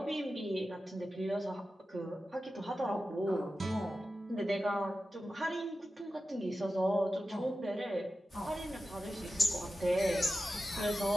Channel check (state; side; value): normal; both; correlation 0.93